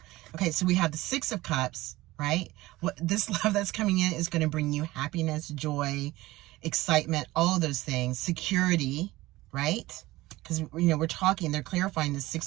Okay, so we have the Six of Cups, right? What this love that's coming in is going to bring you happiness, joy, excitement, all of those things, security, right? Because, we're talking, they're clarifying the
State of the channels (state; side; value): quieter; left; 18.4 dB